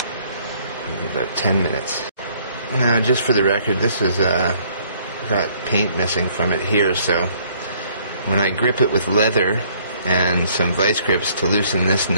in about 10 minutes. Now, just for the record, this is got paint missing from it here, so when I grip it with leather and some vice grips to loosen this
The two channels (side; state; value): both; inverted; correlation -0.62